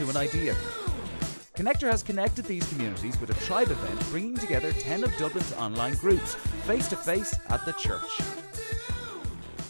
an idea. Connector has connected these communities with a tribe event bringing together 10 of Dublin's online groups, face to face at the church.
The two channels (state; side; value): inverted; both; correlation -1.00